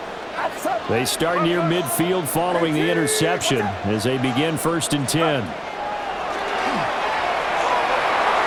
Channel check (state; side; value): identical; both; correlation 1.00